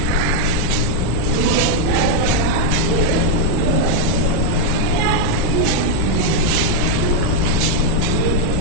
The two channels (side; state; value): both; different; correlation 0.00